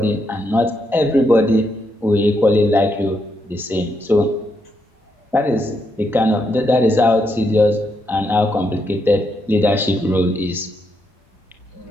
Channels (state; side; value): normal; both; correlation 0.79